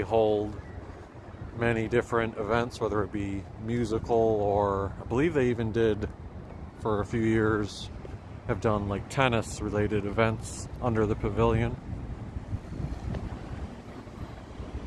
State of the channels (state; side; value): identical; both; correlation 1.00